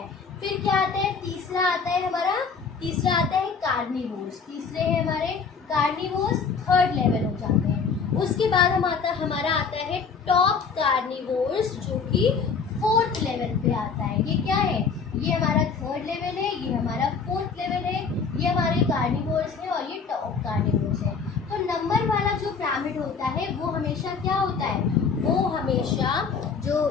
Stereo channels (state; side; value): quieter; right; 5.5 dB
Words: फिर क्या आता है, तीसरा आता है हमारा, तीसरा आता है कार्निवोर्स, तीसरे है हमारे कार्निवोर्स, थर्ड लेवल हो जाते हैं। उसके बाद हमारा आता है टॉप कार्निवोर्स जो कि फोर्थ लेवल पे आता है। ये क्या है, ये हमारा थर्ड लेवल है, ये हमारा फोर्थ लेवल है, ये हमारे कार्निवोर्स है और ये टॉप कार्निवोर्स है। तो नंबर वाला जो पिरामिड होता है वो हमेशा क्या होता है, वो हमेशा जो